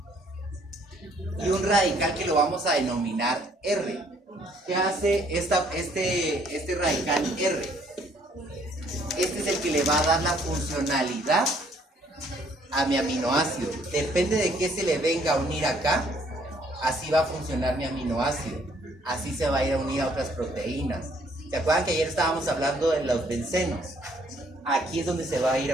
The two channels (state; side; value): normal; both; correlation 0.64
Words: Y un radical que lo vamos a denominar R. ¿Qué hace este radical R? Este es el que le va a dar la funcionalidad a mi aminoácido. Depende de qué se le venga a unir acá, así va a funcionar mi aminoácido. Así se va a ir a unir a otras proteínas. ¿Se acuerdan que ayer estábamos hablando de los bencenos? Aquí es donde se va a ir